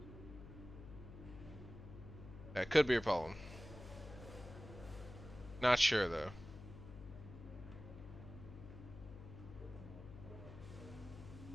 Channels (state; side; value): noise; left; hum, 13 dB below the sound